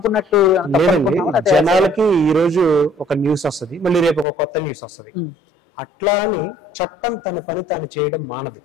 జనాలకి ఈ రోజు ఒక న్యూస్ వస్తుంది, మళ్ళీ రేపు ఒక కొత్త న్యూస్ వస్తుంది. అట్లా అని చట్టం తన పని తాను చేయడం మానదు.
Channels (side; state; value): right; drops out; at 4.2 s